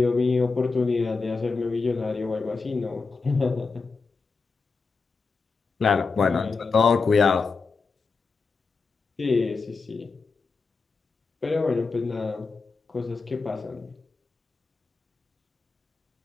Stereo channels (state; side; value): quieter; right; 4.4 dB